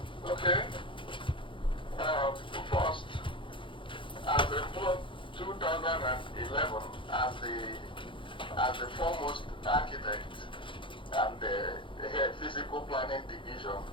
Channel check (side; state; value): right; late; 0.25 ms